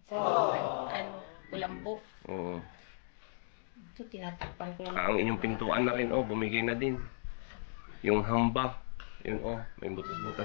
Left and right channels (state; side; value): silent; right; digital silence